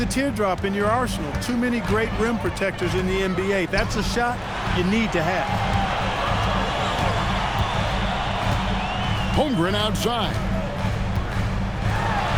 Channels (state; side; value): identical; both; correlation 1.00